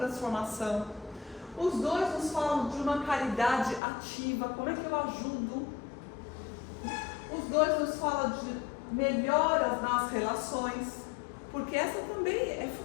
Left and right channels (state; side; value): drops out; right; at 3.8 s